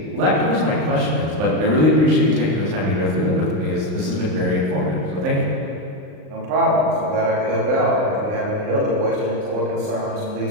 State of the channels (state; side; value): late; left; 38 ms